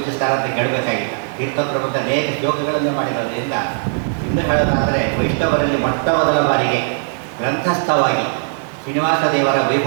ಅಂತ ಕೇಳಬೇಕಾಗಿಲ್ಲ. ತೀರ್ಥಪ್ರಬಂಧ ಅನೇಕ ಶ್ಲೋಕಗಳನ್ನು ಮಾಡಿರೋದ್ರಿಂದ ಇನ್ನು ಹೇಳೋದಾದರೆ ವೈಷ್ಣವರಲ್ಲಿ ಮೊಟ್ಟ ಮೊದಲ ಬಾರಿಗೆ ಗ್ರಂಥಸ್ಥವಾಗಿ ಶ್ರೀನಿವಾಸ ದೇವರ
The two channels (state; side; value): silent; left; digital silence